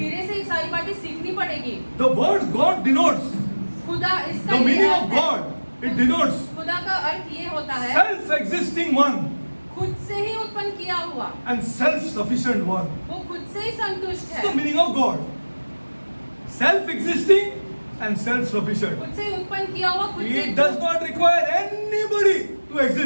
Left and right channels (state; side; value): inverted; both; correlation -1.00